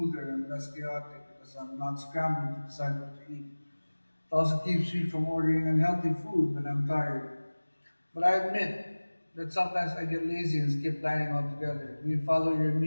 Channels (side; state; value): both; inverted; correlation -1.00